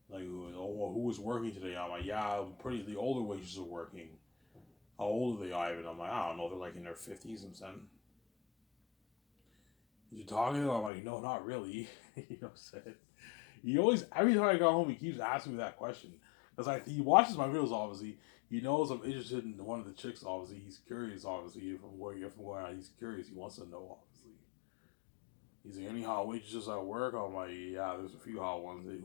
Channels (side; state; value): right; drops out; at 10.9 s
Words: Like, oh, well, who was working today? I'm like, yeah, pretty. The older waitresses are working. How old are they, Ivan? I'm like, I don't know. They're like in their 50s. I'm saying, you talking to them? I'm like, no, not really. You know what I'm saying? He always, every time I go home, he keeps asking me that question. Because he watches my videos, obviously. He knows I'm interested in one of the chicks, obviously. He's curious, obviously. From where he's curious, he wants to know, obviously. He's like, any hot waitresses at work? I'm like, yeah, there's a few hot ones.